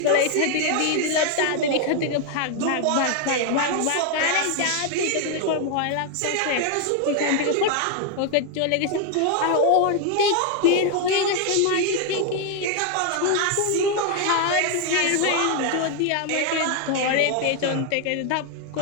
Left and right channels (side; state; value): both; different; correlation 0.01